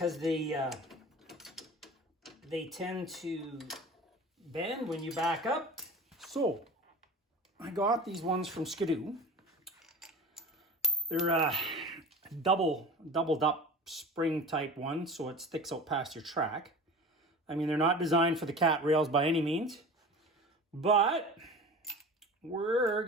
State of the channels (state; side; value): normal; both; correlation 0.36